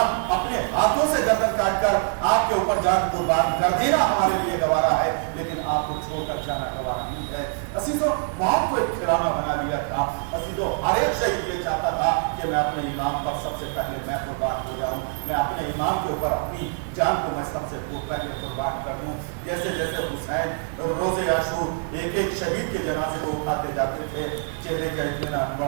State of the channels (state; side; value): silent; left; 62 dB below the other